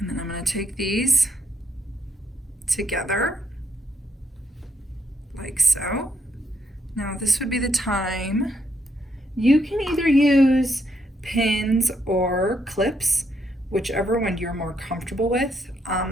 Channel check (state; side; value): normal; both; correlation 0.75